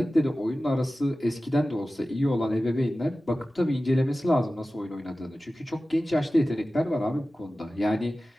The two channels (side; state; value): both; normal; correlation 0.95